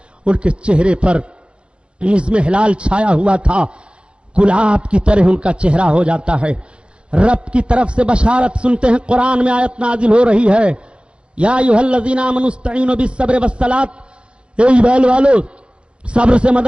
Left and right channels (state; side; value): late; left; 0.057 ms